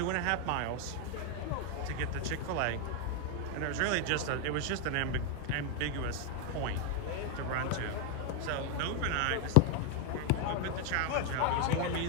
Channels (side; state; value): both; different; correlation 0.00